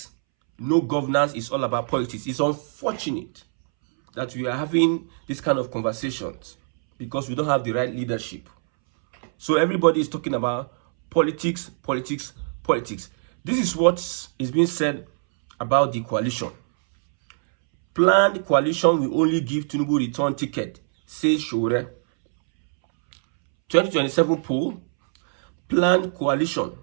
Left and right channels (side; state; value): left; silent; 63 dB below the other